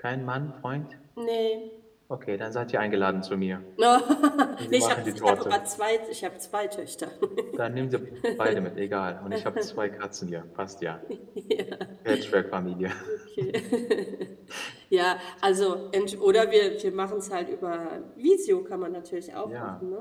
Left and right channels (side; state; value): both; identical; correlation 1.00